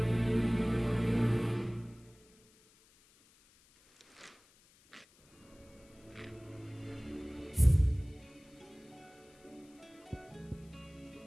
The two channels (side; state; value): left; noise; hiss, 29 dB below the sound